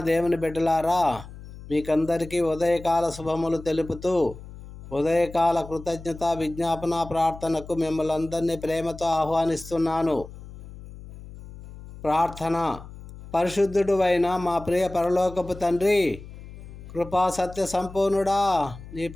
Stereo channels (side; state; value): left; noise; hum, 15 dB below the sound